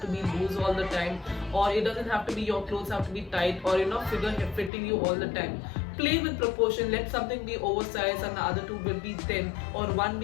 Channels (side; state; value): right; drops out; at 4.7 s